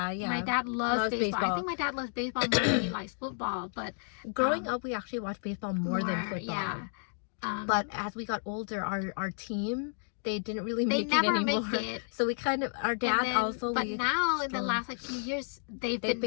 My dad loves baseball. I think my dad loves baseball more than he likes football. But growing up, we actually watched baseball more than football. Yeah. But as we got older, our team, they didn't really make it never anymore. Make it. So we kind of, our dad also. But now in the last few years, they've been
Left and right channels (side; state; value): right; silent; 57 dB below the other